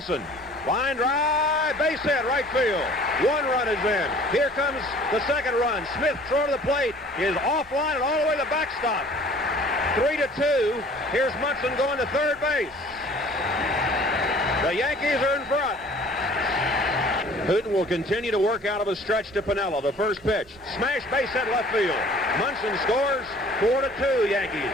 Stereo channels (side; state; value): both; normal; correlation 0.51